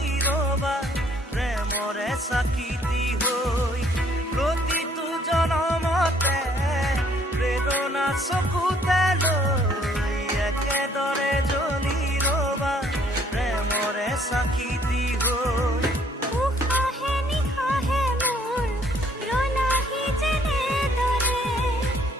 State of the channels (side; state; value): both; normal; correlation 0.62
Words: ৰবা প্ৰেমৰে চাকিতি হৈ প্ৰতিটো জনমতে প্ৰেৰণা চকুতে লৈ একেদৰে জ্বলি ৰবা প্ৰেমৰে চাকিতি হৈ